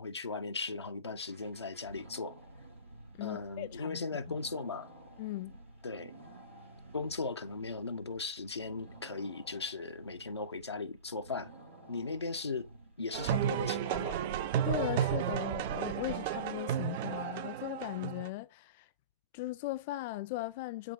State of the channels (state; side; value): inverted; both; correlation -0.33